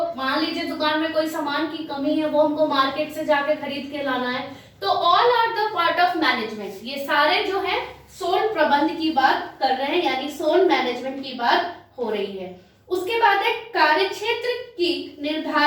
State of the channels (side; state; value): both; identical; correlation 1.00